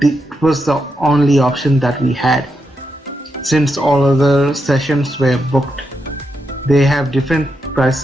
it was the only option that we had. Since all other sessions were booked, they have different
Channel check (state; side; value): normal; both; correlation 0.84